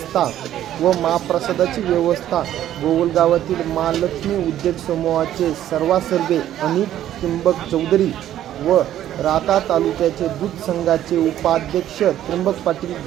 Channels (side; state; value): left; quieter; 12.0 dB